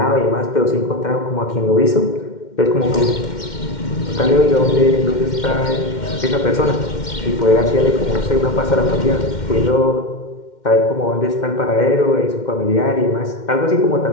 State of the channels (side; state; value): right; late; 2.1 ms